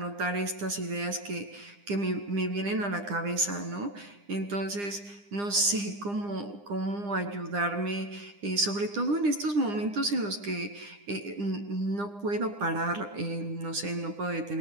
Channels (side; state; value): left; late; 9.9 ms